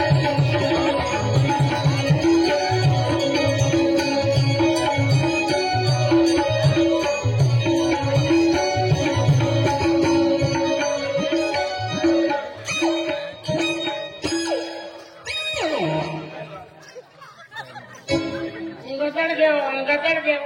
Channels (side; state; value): both; identical; correlation 1.00